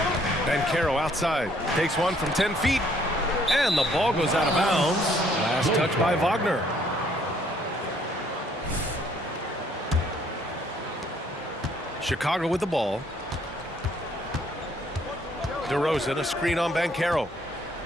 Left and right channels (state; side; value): normal; both; correlation 0.64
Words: Banchero outside. Takes one from 10 feet. And the ball goes out of bounds. Last touch by Wagner. Chicago with the ball. DeRozan, a screen on Banchero.